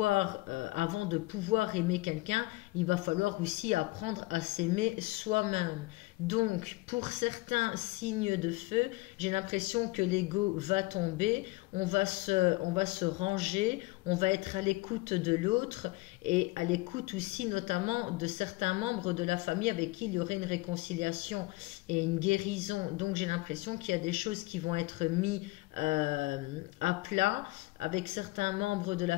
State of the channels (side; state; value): right; quieter; 21.6 dB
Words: avant de pouvoir aimer quelqu'un, il va falloir aussi apprendre à s'aimer soi-même. Donc, pour certains signes de feu, j'ai l'impression que l'ego va tomber, on va se ranger, on va être à l'écoute de l'autre et à l'écoute aussi notamment de certains membres de la famille avec qui il y aurait une réconciliation et une guérison. Donc, j'ai l'impression qu'il y a des choses qui vont être mises à plat avec certains membres de la